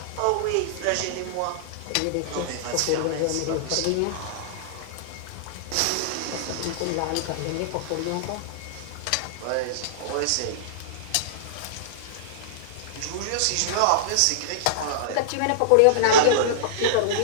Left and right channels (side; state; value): both; different; correlation -0.02